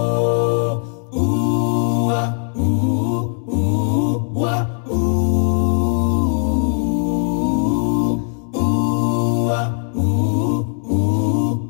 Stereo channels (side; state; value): right; silent; digital silence